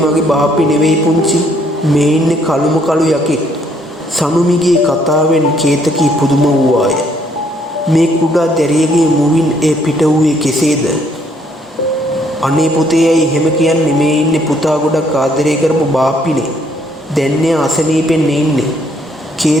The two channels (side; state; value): both; normal; correlation 0.68